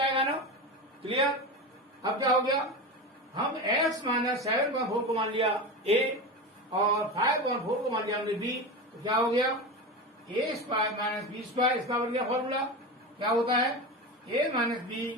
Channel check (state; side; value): normal; both; correlation 0.23